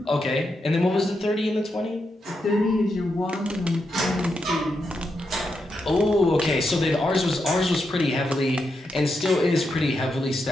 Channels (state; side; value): normal; both; correlation 0.84